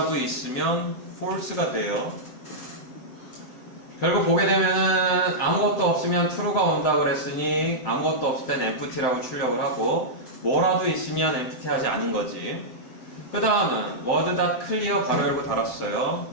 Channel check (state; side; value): late; right; 7.8 ms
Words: 있으면 false가 돼요. 결국 보게 되면은 아무것도 없으면 true가 온다 그랬으니 아무것도 없을 땐 empty라고 출력을 하고 뭐라도 있으면 empty 하지 않은 거지. 그 다음은 word.clear 가로 열고 달았어요.